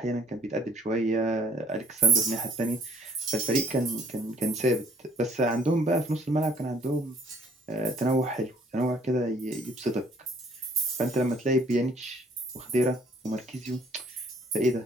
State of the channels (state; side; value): normal; both; correlation 0.60